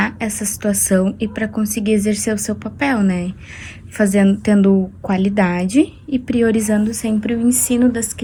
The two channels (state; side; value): identical; both; correlation 1.00